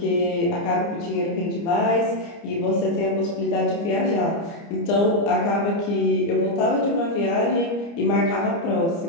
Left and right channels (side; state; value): right; late; 29 ms